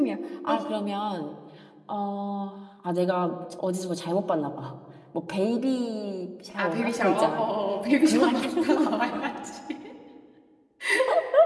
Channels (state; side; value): identical; both; correlation 1.00